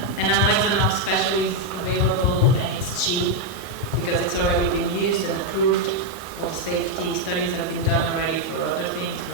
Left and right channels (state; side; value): normal; both; correlation 0.01